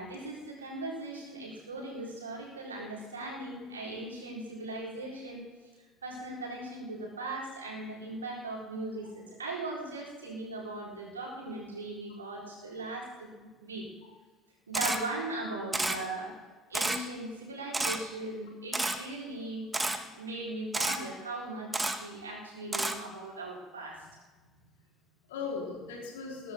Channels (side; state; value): both; normal; correlation 0.44